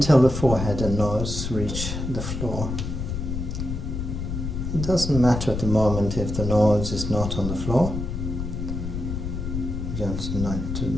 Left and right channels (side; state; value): left; noise; rumble, 4 dB below the sound